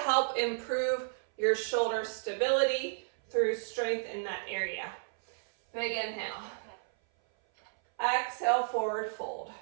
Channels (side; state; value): left; silent; 56 dB below the other